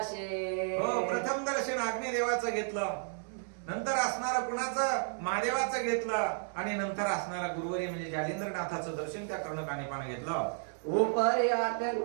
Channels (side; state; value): left; silent; digital silence